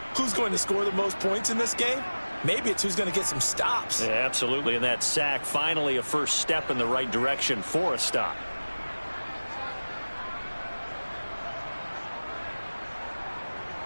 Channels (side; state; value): both; inverted; correlation -1.00